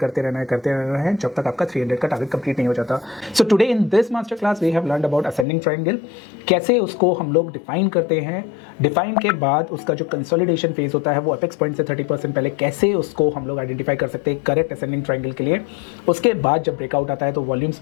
रहना है, करते रहना है जब तक आपका 300 का टारगेट कंप्लीट नहीं हो जाता। So today in this master class we have learned about ascending triangle, कैसे उसको हम लोग डिफाइन करते हैं, डिफाइन के बाद उसका जो कंसोलिडेशन फेज होता है वो अपेक्स पॉइंट से 30% पहले कैसे उसको हम लोग आइडेंटिफाई कर सकते हैं करेक्ट असेंडिंग ट्रायंगल के लिए। उसके बाद जब ब्रेकआउट आता है तो वॉल्यूम्स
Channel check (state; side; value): drops out; right; at 5.5 s